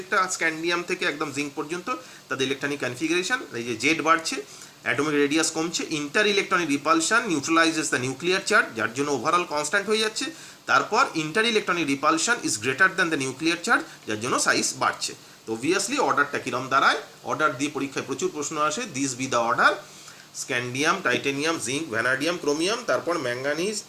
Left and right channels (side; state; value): both; identical; correlation 1.00